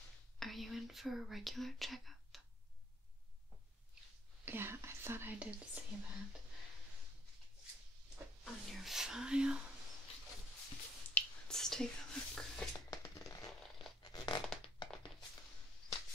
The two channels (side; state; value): both; normal; correlation 0.62